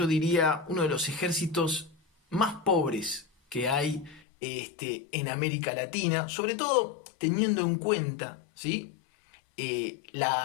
diría uno de los ejércitos más pobres que hay en América Latina, sobre todo teniendo en cuenta, ¿sí?,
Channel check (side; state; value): right; drops out; at 4.2 s